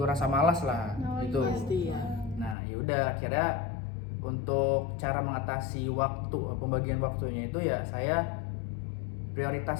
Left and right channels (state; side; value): drops out; right; at 2.6 s